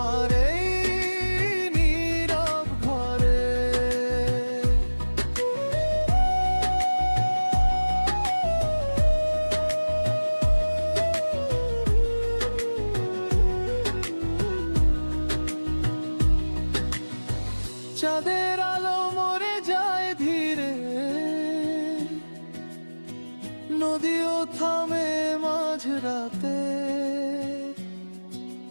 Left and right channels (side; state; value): both; inverted; correlation -1.00